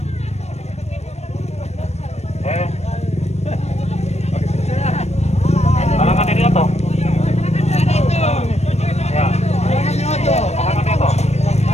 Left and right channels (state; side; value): late; right; 0.31 ms